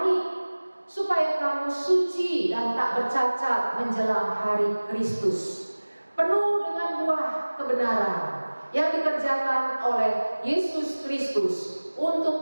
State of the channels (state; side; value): inverted; both; correlation -1.00